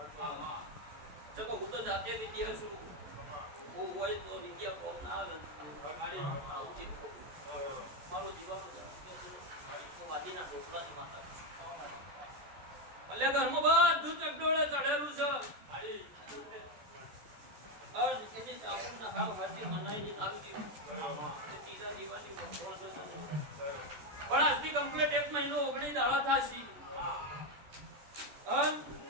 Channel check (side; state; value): left; late; 14 ms